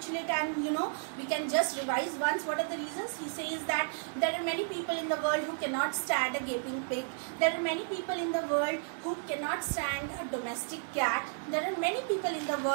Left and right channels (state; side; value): silent; left; 56 dB below the other